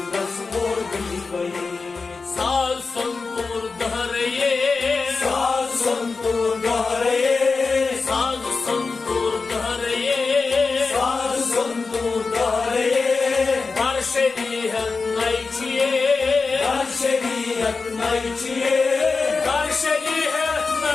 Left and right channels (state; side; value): quieter; right; 4.3 dB